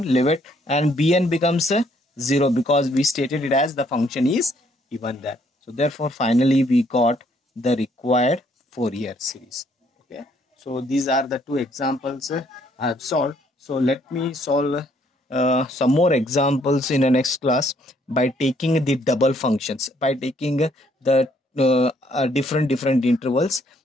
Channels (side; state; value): both; normal; correlation 0.67